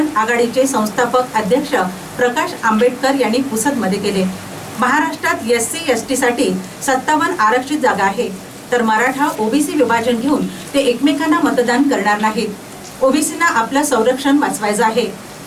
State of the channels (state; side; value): identical; both; correlation 1.00